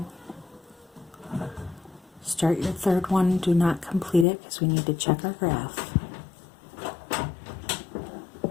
Start your third one. Do not complete it because we need to check our graph.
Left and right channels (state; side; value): drops out; right; at 4.2 s